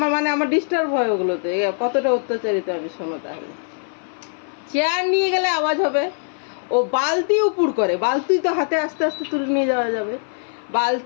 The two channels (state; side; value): silent; right; 57 dB below the other